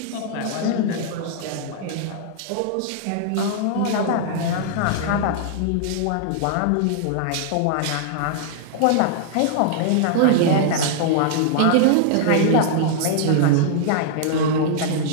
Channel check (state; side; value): different; both; correlation -0.01